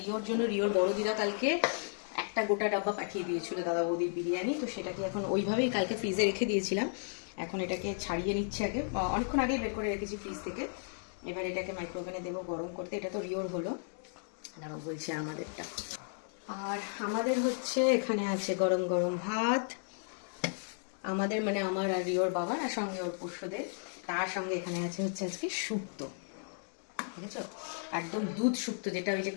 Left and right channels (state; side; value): silent; right; digital silence